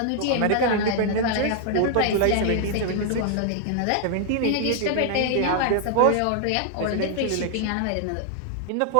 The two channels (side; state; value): both; different; correlation 0.00